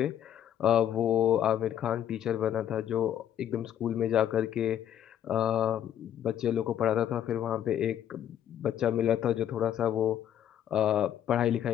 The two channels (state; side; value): quieter; right; 10.2 dB